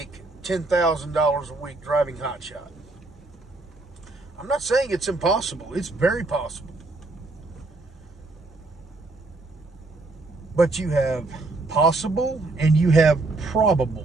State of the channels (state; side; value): quieter; left; 3.2 dB